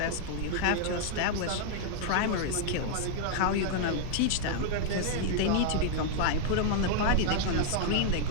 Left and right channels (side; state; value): both; different; correlation -0.01